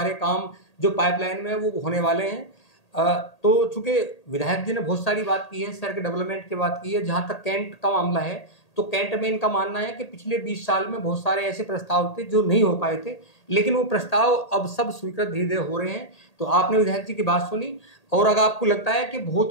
काम जो पाइपलाइन में वो होने वाले हैं। तो चूंकि विधायक जी ने बहुत सारी बात की है, शहर के डेवलपमेंट की बात की है। जहाँ तक कैंट का मामला है, तो कैंट में इनका मानना है कि पिछले 20 साल में बहुत सारे ऐसे प्रस्ताव थे जो नहीं हो पाए थे, लेकिन वो प्रस्ताव अब सब स्वीकृत धीरे धीरे हो रहे हैं। तो आपने विधायक जी की बात सुनी, और अगर आपको लगता है कि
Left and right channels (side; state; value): right; late; 1.8 ms